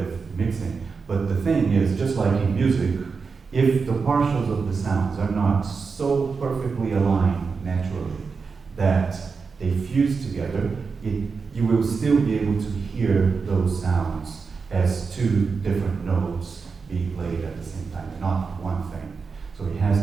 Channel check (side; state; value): left; quieter; 5.0 dB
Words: mixing, but the thing is, just like in music, if the partials of the sounds are not so perfectly aligned naturally that they fuse together, you will still be able to hear those sounds as two different notes being played at the same time, not one thing. So it